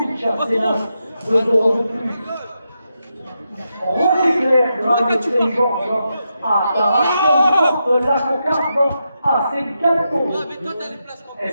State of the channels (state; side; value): inverted; both; correlation -0.86